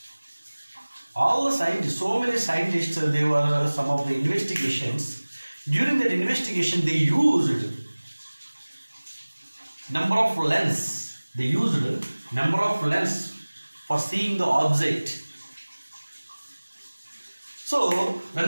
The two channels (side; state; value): both; inverted; correlation -1.00